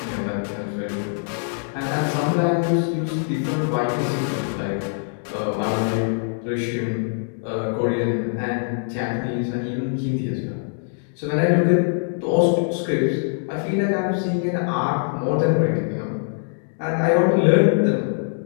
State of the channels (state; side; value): silent; right; digital silence